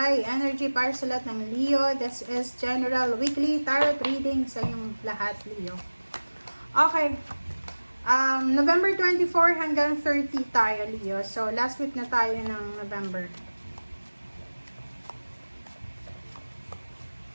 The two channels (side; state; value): both; inverted; correlation -1.00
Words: energy para sa lahat ng Leo. This is General Weekly Tarot Reading sa inyong lahat, Leo. Okay. November 24 hanggang 30 tayo, Leo. So, last week na tayo ng November.